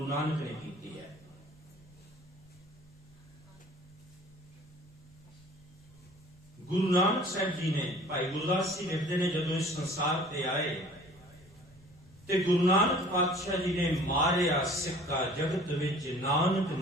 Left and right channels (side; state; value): both; normal; correlation 0.49